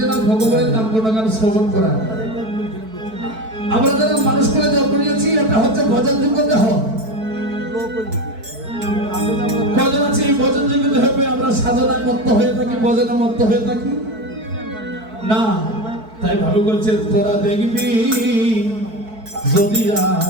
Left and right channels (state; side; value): late; left; 4.6 ms